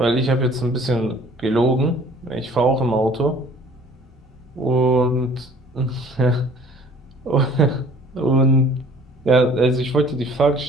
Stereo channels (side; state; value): both; normal; correlation 0.52